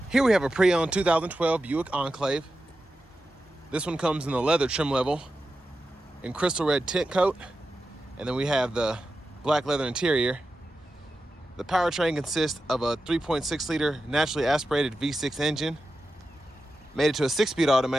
Here we have a pre-owned 2012 Buick Enclave. This one comes in the leather trim level in crystal red tint coat, and then we have the black leather interior. The powertrain consists of a 3.6 liter naturally aspirated V6 engine, made it to a 6-speed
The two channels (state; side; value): normal; both; correlation 0.91